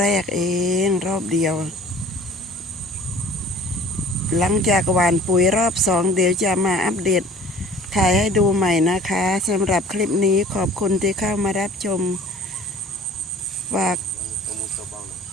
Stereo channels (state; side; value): normal; both; correlation 0.48